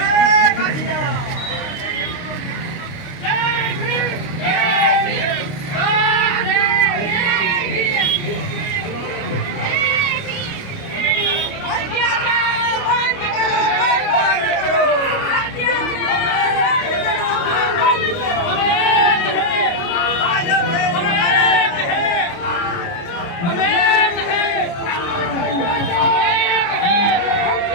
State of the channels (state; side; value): late; right; 29 ms